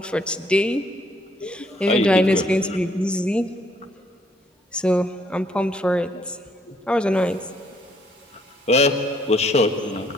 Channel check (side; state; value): both; normal; correlation 0.67